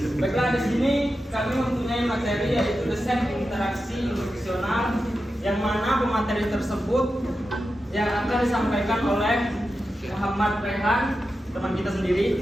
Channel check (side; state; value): both; normal; correlation 0.91